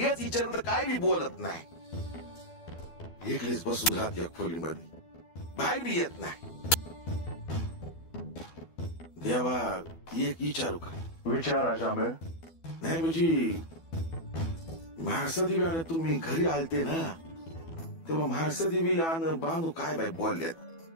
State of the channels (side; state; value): right; late; 12 ms